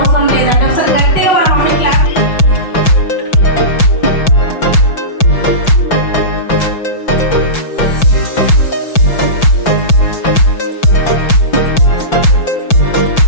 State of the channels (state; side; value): late; right; 5.9 ms